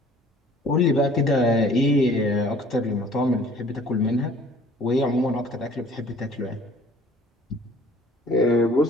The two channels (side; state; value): both; normal; correlation 0.52